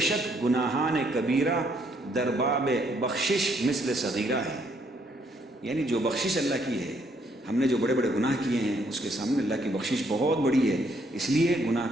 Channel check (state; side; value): normal; both; correlation 0.69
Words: شک گناہان کبیرہ در باب بخشش مثل صغیرہ ہے، یعنی جو بخشش اللہ کی ہے، ہم نے جو بڑے بڑے گناہ کیے ہیں اس کے سامنے اللہ کی بخشش بہت بڑی ہے، اس لیے